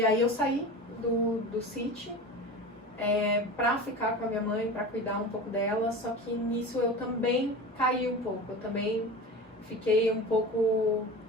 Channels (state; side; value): normal; both; correlation 0.32